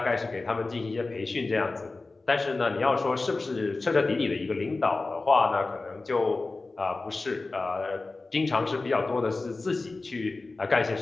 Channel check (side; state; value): right; quieter; 3.5 dB